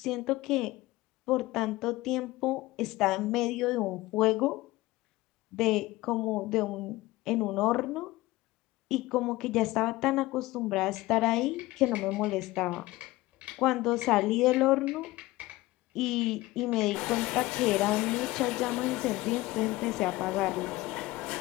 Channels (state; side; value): quieter; right; 19.1 dB